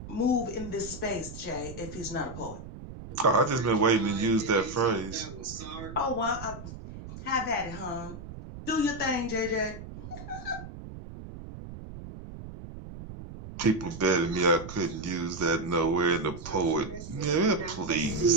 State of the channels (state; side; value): noise; right; rumble, 12 dB below the sound